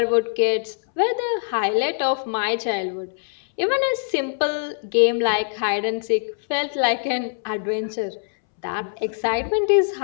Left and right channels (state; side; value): silent; right; 64 dB below the other